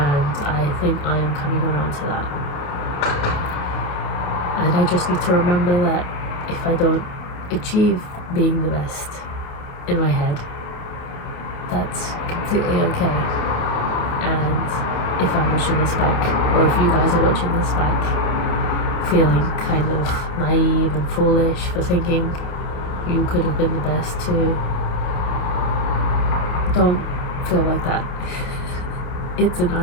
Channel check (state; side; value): late; right; 28 ms